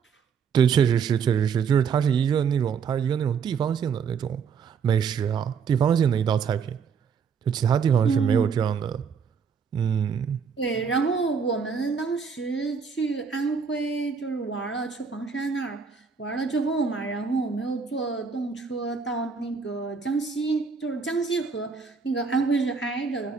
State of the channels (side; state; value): left; quieter; 6.1 dB